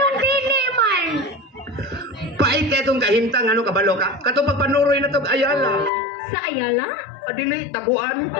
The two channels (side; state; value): right; drops out; at 5.9 s